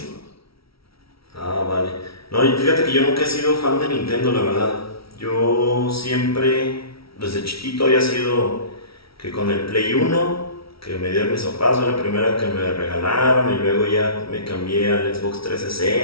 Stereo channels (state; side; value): late; right; 0.75 ms